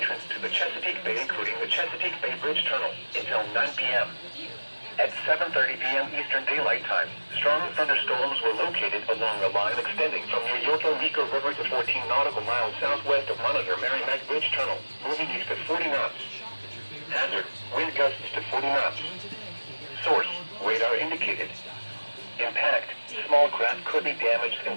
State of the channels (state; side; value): inverted; both; correlation -1.00